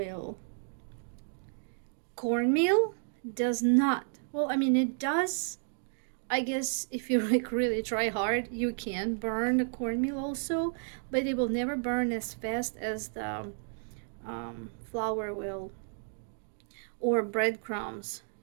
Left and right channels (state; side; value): silent; left; digital silence